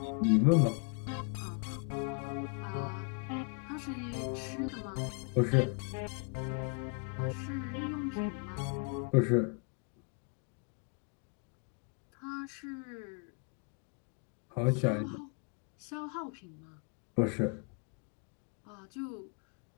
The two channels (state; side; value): quieter; right; 38.7 dB